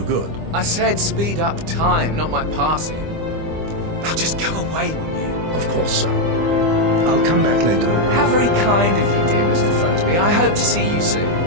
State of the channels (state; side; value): late; left; 25 ms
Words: good. I said speed up time, not my passing. Now just go away, wouldn't you? Of course, sir. I'll come back later. How very kind of you, dear Mr. Fernsby. I hope to see you soon.